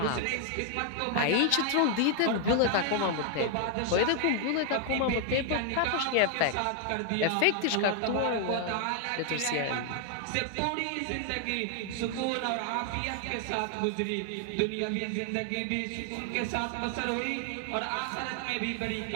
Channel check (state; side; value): different; both; correlation 0.00